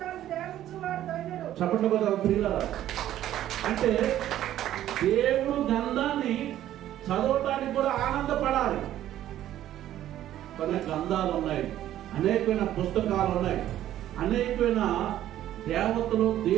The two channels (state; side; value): quieter; left; 12.5 dB